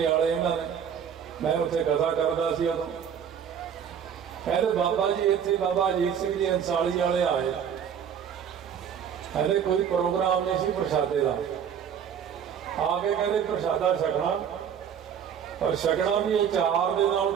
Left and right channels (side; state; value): left; quieter; 8.2 dB